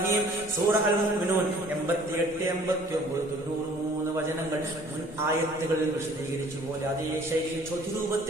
സൂറഹ അൽ മുഅ്മിനൂൻ 88-89 വചനങ്ങൾ മുൻ ആയത്തുകളിൽ വിശദീകരിച്ചു പോലെ അതേ ശൈലിയിൽ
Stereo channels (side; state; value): both; normal; correlation 0.54